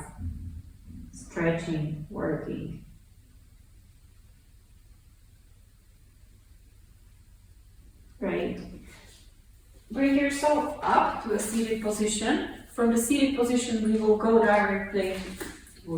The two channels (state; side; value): identical; both; correlation 1.00